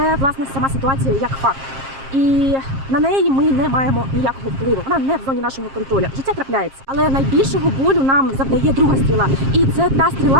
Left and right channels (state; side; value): late; left; 7.5 ms